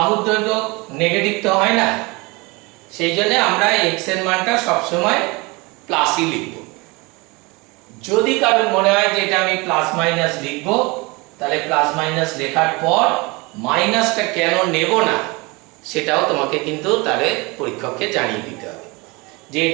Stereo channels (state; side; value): quieter; left; 25.9 dB